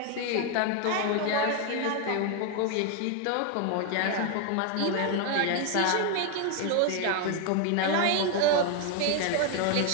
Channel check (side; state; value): both; different; correlation 0.01